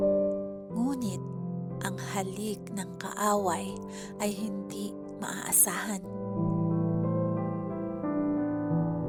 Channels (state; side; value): identical; both; correlation 1.00